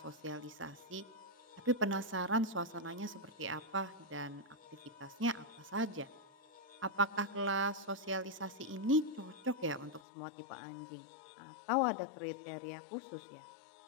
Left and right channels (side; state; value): right; drops out; at 10.0 s